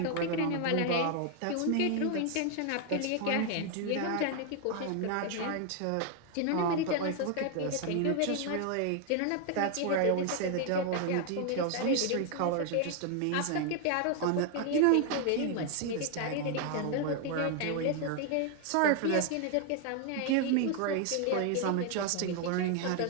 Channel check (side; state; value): both; different; correlation 0.00